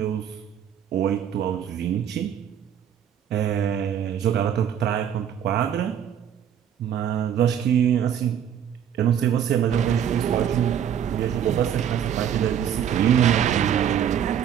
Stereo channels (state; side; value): quieter; left; 9.2 dB